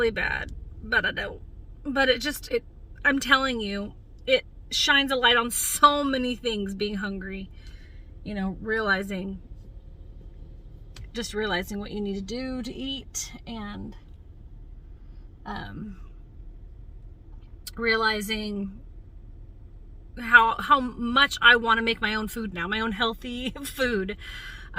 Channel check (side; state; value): both; identical; correlation 1.00